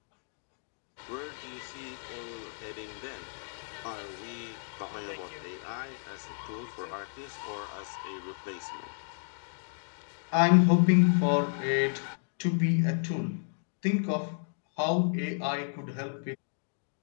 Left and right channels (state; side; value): silent; right; digital silence